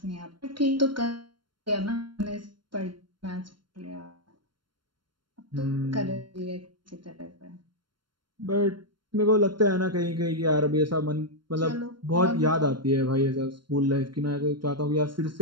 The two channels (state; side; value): late; left; 0.72 ms